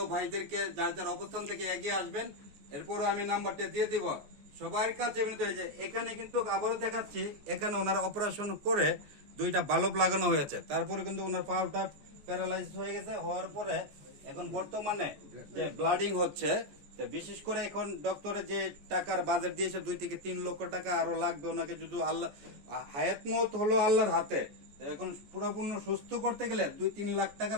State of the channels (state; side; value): late; left; 14 ms